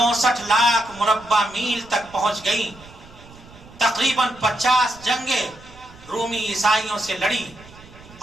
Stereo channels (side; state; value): right; noise; rumble, 21 dB below the sound